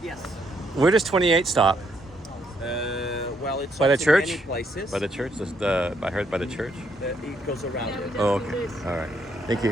Yes. Where does 28 stop? Well, it's By the also church? many places. By the church? I heard by the church. It goes around it. Oh, okay. All right. Thank you.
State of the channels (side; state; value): both; normal; correlation 0.73